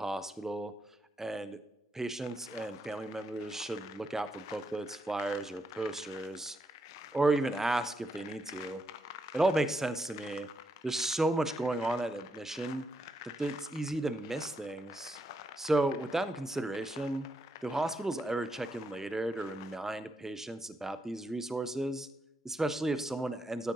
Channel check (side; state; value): both; normal; correlation 0.81